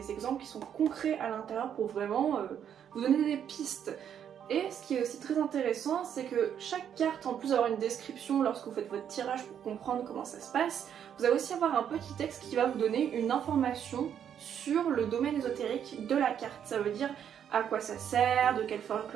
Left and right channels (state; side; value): quieter; left; 8.9 dB